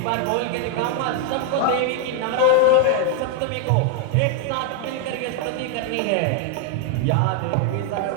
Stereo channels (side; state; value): both; different; correlation 0.00